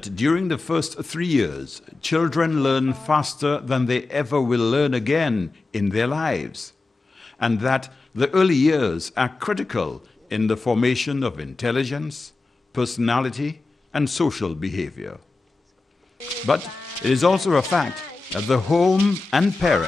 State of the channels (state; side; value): quieter; right; 3.5 dB